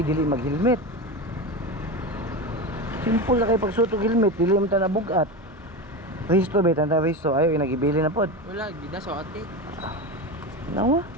mag-helmet. Simple na kay pagsutog helmet, dili mo ta nabugat. Resto ba tanda resto ayo inagibili na pod. Wala, gida sa ate. Nawa.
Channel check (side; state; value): both; normal; correlation 0.22